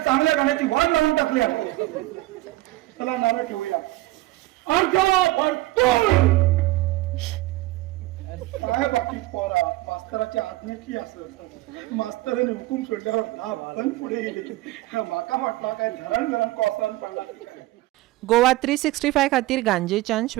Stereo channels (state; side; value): quieter; left; 18.3 dB